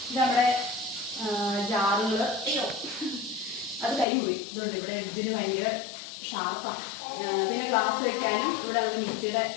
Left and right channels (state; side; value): drops out; right; at 4.0 s